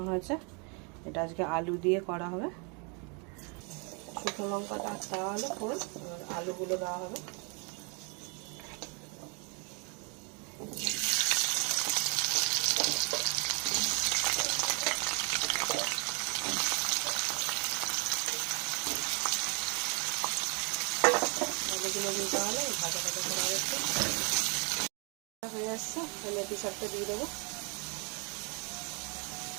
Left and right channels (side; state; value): left; quieter; 34.3 dB